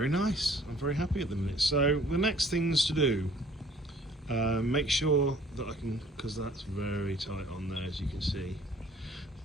nice. I'm very happy at the minute. So the next things to do, make sure that I can, because that's very tight on there, as you can see.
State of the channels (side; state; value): both; normal; correlation 0.56